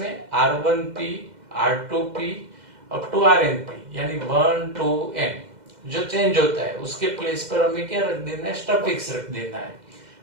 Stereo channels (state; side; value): late; left; 2.0 ms